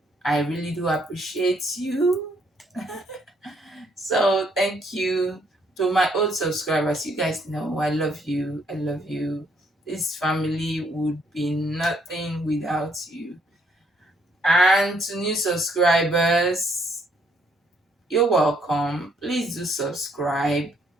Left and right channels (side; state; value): both; normal; correlation 0.69